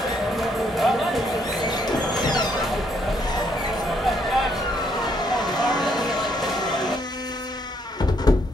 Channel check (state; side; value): normal; both; correlation 0.71